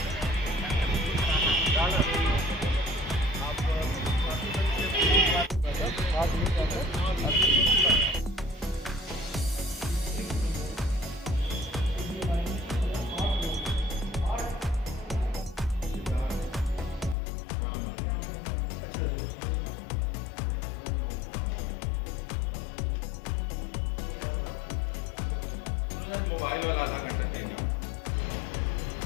मोबाइल वाला आधा घंटा टाइम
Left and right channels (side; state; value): right; drops out; at 17.2 s